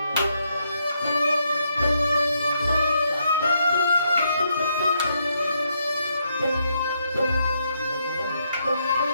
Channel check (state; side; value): inverted; both; correlation -0.77